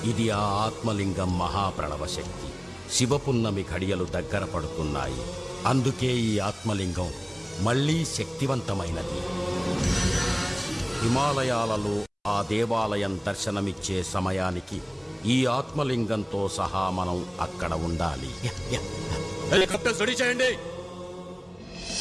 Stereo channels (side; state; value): both; identical; correlation 1.00